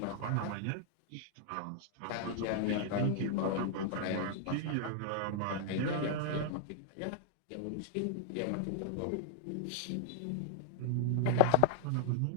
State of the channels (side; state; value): both; different; correlation 0.00